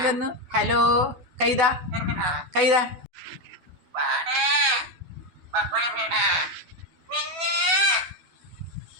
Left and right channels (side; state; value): left; late; 12 ms